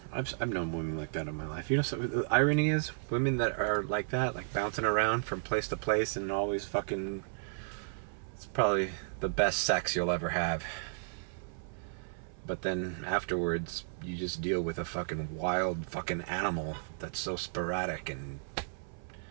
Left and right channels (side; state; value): left; silent; 55 dB below the other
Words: I've known women like that in my life. You know, so the irony is, women that are like that, like bouncing around from place to place and always fucking, it's probably the best sex you'll ever have. But then afterwards, you just deal with a fucking wild fucking animal that's so sporadic and